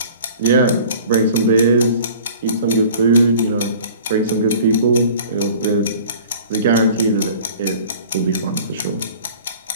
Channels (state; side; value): inverted; both; correlation -0.46